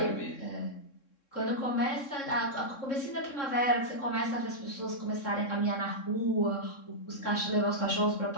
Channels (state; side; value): late; right; 3.6 ms